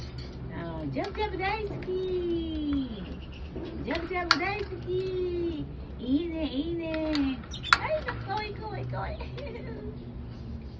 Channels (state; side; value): identical; both; correlation 1.00